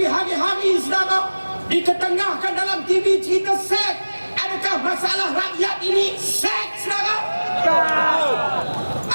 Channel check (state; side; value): inverted; both; correlation -1.00